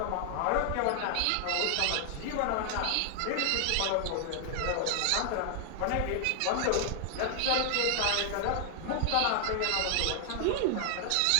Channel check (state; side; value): different; both; correlation 0.00